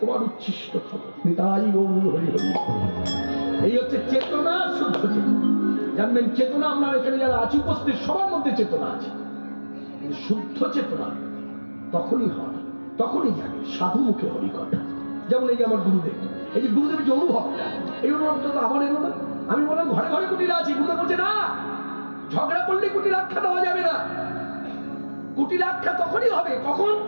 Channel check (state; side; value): inverted; both; correlation -1.00